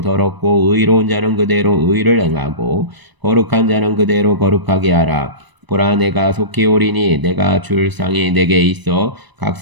더럽고 의로운 자는 그대로 의를 행하고 거룩한 자는 그대로 거룩하게 하라. 보라 내가 속히 오리니 내가 줄 상이 내게 있어 각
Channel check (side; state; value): left; late; 1.0 ms